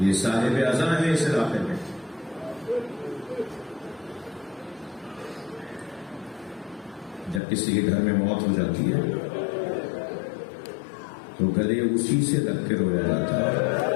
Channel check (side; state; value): right; drops out; at 7.4 s